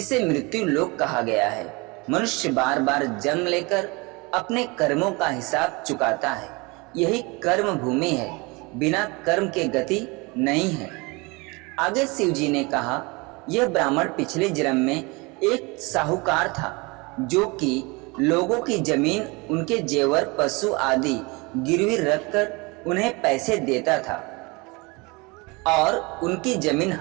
मृत्यु लोक कहा गया है। मनुष्य बार बार जन्म लेकर अपने कर्मों का हिसाब चुकाता है। यही कर्म भूमि है, बिना कर्म के गति नहीं है। आगे शिव जी ने कहा, यह ब्राह्मण पिछले जन्म में एक साहूकार था, जो कि लोगों की जमीन, उनके जेवर, पशु आदि गिरवी रखकर उन्हें पैसे देता था और उनकी जमीन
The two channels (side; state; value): left; quieter; 26.6 dB